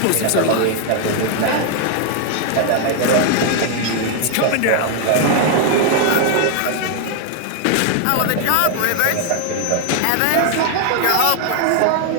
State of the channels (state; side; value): different; both; correlation 0.00